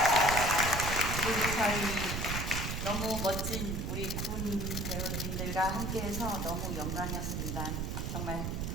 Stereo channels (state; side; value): noise; right; rumble, 2 dB below the sound